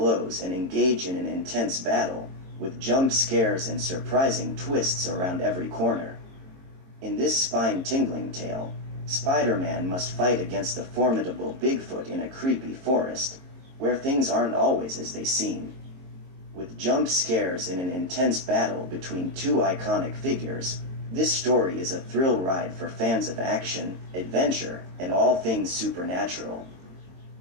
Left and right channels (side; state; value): left; late; 22 ms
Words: and engage in an intense battle, with jump scares and surprising twists around every corner. In this spine-tingling tale, Spider-Man must fight against the formidable Bigfoot in a creepy forest, where things aren't always as they seem. With jump scares in an intense battle between two iconic figures, this story is a thrill ride for fans of action, adventure, and all things supernatural.